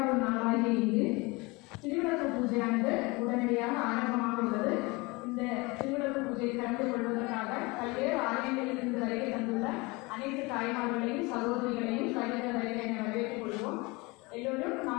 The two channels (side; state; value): right; quieter; 25.1 dB